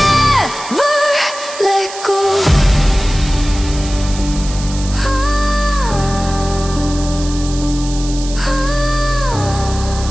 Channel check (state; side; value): noise; right; hiss, 12 dB below the sound